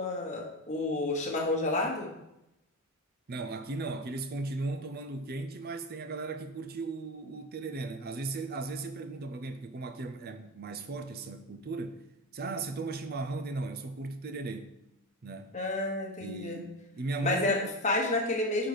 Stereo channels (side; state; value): both; normal; correlation 0.21